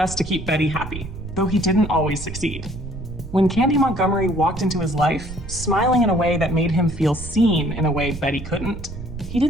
to keep Betty happy, though he didn't always succeed. When Candy Montgomery walked into his life, smiling in a way that made him feel seen in a way Betty couldn't, he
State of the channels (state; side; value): noise; right; rumble, 10 dB below the sound